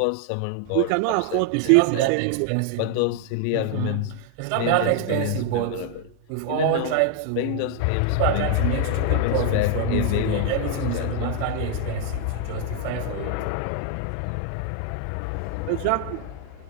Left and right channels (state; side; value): different; both; correlation 0.00